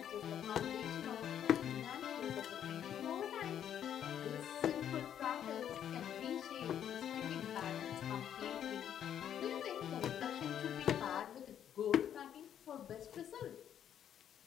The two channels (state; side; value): quieter; right; 9.7 dB